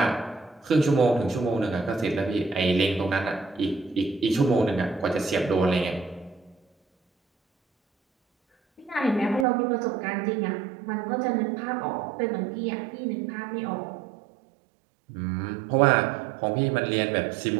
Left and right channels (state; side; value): drops out; left; at 9.5 s